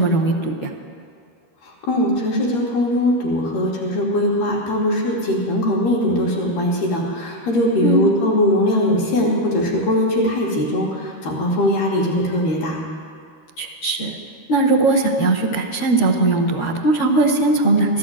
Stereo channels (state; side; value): late; right; 13 ms